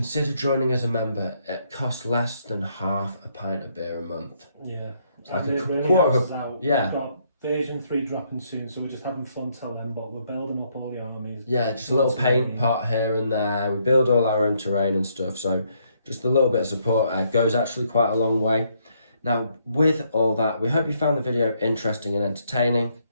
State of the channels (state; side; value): inverted; both; correlation -0.72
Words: joining as a member. It costs less than half a pint of beer a month. Yeah. Like a really quarter of out. yeah. We've got version 3 dropping soon, so we're just having fun till then, but we're building up all the armies. Yeah, just a little paint pot here and there. We build all our own terrain and stuff, so just a little bit of support goes actually quite a long way. Now, with all that, we hope you found the video interesting and entertaining.